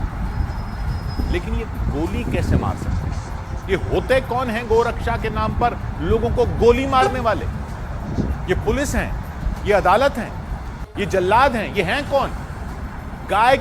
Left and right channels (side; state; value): both; identical; correlation 1.00